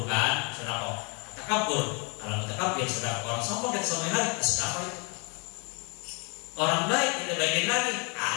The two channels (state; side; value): quieter; right; 33.8 dB